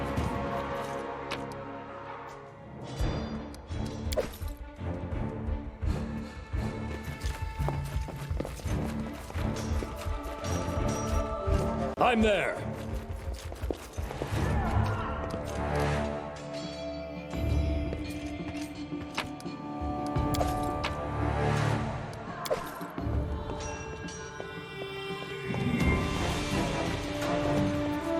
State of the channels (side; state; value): both; identical; correlation 1.00